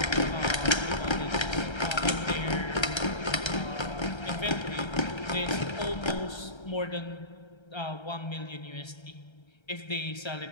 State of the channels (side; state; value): right; late; 1.3 ms